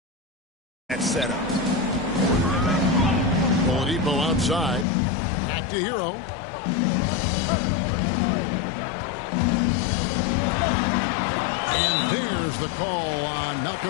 That setup. Oladipo outside. Back to Hero. And there's the call on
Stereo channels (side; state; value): right; drops out; at 4.9 s